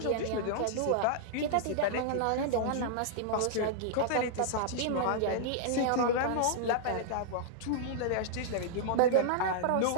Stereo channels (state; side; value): different; both; correlation -0.01